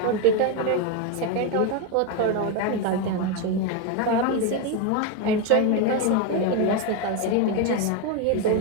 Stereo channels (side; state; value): both; different; correlation 0.02